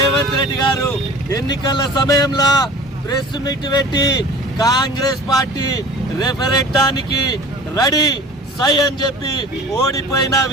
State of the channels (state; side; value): normal; both; correlation 0.42